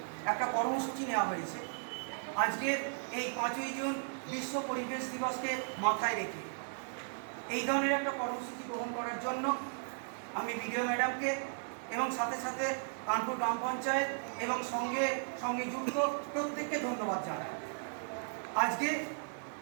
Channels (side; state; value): left; silent; 54 dB below the other